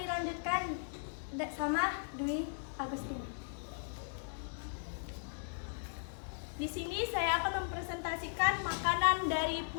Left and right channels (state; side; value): silent; right; digital silence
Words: sama Dwi Agustina. Di sini saya akan mempresentasikan makanan dari